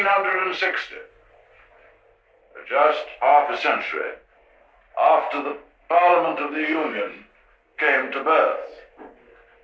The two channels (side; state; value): both; identical; correlation 1.00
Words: just half a century after the Parliament of the Union came to birth.